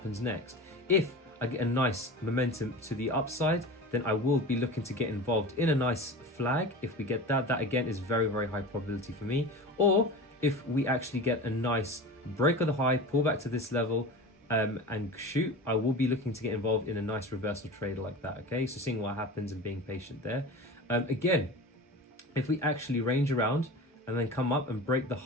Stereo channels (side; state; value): both; normal; correlation 0.32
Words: next. If I get a nice momentum to the upside, then I will be looking to get involved in a nice flag. If we get that again is very, very high probability for me. Or if we actually get a nice break of the high, pull back to this level and shoot, I will be looking to get involved in a nice reversal trade like that, okay? So seeing what happens and being patient there. Again, if we actually range around and then come up and break the